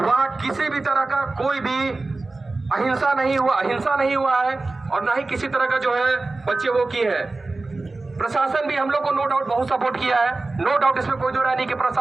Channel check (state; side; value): quieter; left; 3.3 dB